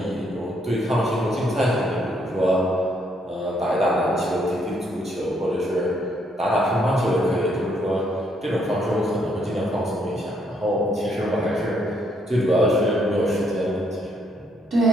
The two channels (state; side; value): normal; both; correlation 0.71